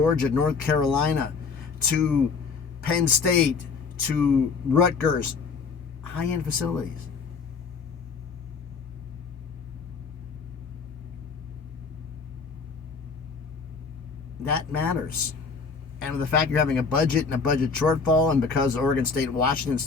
North Carolina, to Penn State, to Rutgers, high-end facilities. That matters. And with the fact you're having a budget and a budget shortfall, and because Oregon State and Washington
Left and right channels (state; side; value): quieter; right; 5.0 dB